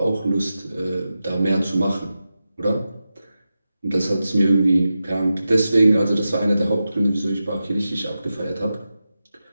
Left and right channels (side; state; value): both; inverted; correlation -0.92